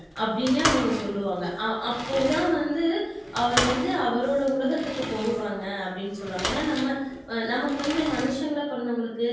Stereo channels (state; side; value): identical; both; correlation 1.00